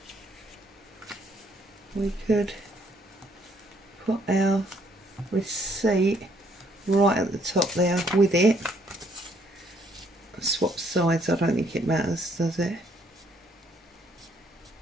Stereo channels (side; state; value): both; normal; correlation 0.67